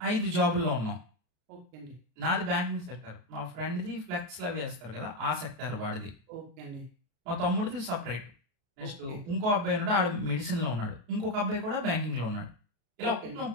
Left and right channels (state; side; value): late; left; 33 ms